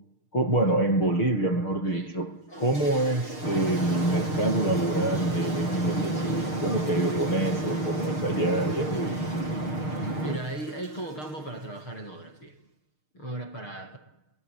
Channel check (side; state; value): right; late; 6.5 ms